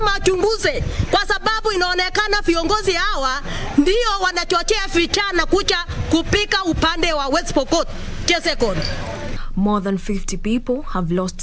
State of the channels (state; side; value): identical; both; correlation 1.00